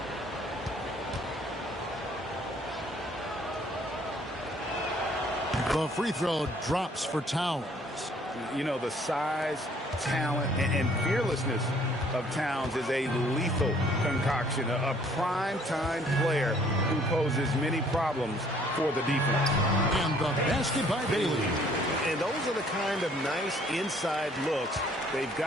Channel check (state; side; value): normal; both; correlation 0.60